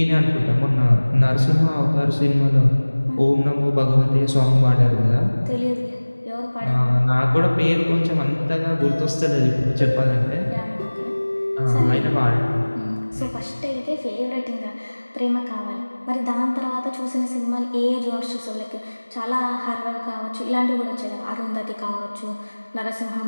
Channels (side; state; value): both; inverted; correlation -1.00